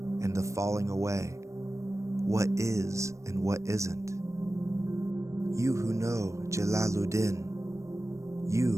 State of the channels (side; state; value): left; late; 0.15 ms